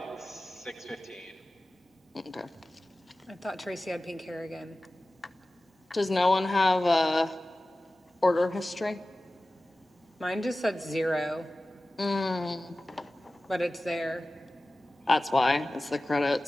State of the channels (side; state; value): both; normal; correlation 0.96